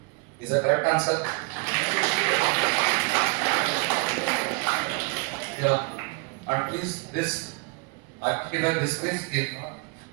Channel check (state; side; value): quieter; left; 29.7 dB